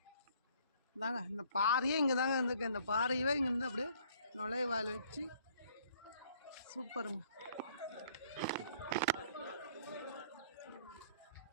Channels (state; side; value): inverted; both; correlation -0.59